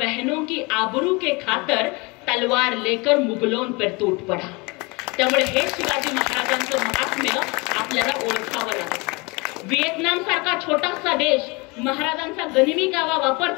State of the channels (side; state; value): right; quieter; 27.2 dB